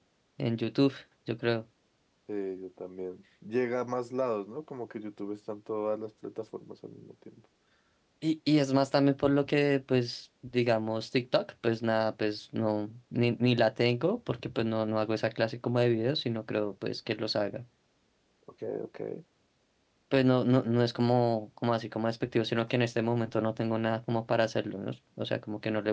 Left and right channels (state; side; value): identical; both; correlation 1.00